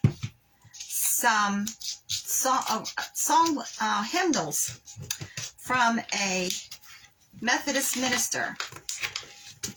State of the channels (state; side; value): identical; both; correlation 1.00